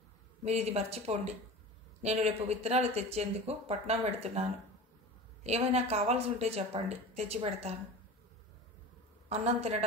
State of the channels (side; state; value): both; normal; correlation 0.34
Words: మీరు ఇది మర్చిపోండి. నేను రేపు విత్తనాలు తెచ్చేందుకు పట్నం పెడుతున్నాను. ఏమైనా కావాల్సి ఉంటే చెప్పండి, తెచ్చి పెడతాను. అన్నం